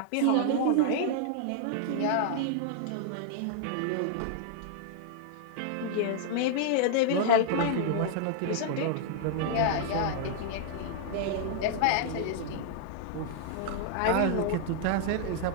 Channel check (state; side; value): different; both; correlation -0.01